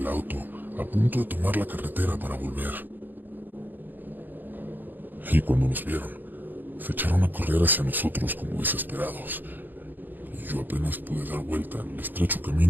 auto, a punto de tomar la carretera para volver. Y cuando nos vieron, se echaron a correr hacia nosotros como desesperados. Y yo apenas pude dar vuelta en el estrecho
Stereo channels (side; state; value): left; late; 0.089 ms